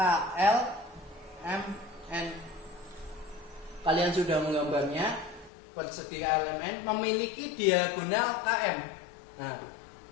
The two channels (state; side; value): drops out; right; at 5.5 s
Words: Kalian sudah menggambarnya. Persegi KLMN memiliki diagonal KM. Nah,